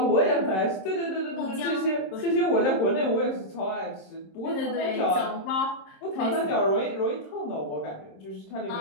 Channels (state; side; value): late; right; 26 ms